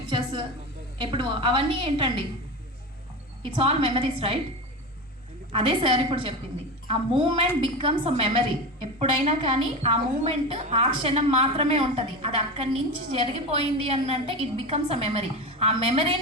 ఎప్పుడు అవన్నీ ఏంటండి, ఇట్స్ ఆల్ మెమరీస్, రైట్? అదే సార్ ఇప్పుడు చెప్పింది. ఆ మూమెంట్ బికమ్స్ అ మెమరీ. ఎప్పుడైనా కానీ ఆ మూమెంట్ ఆ క్షణం మాత్రమే ఉంటుంది. అది అక్కడి నుంచి జరిగిపోయింది అని అంటే ఇట్ బికమ్స్ అ మెమరీ. ఆ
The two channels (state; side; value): normal; both; correlation 0.23